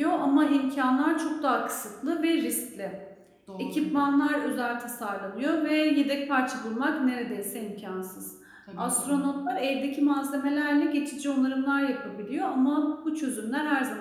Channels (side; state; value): both; identical; correlation 1.00